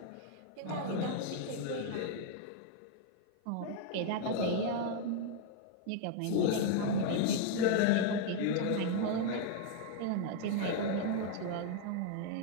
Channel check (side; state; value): both; different; correlation 0.00